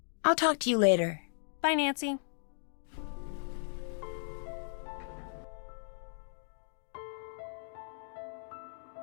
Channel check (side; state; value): right; silent; digital silence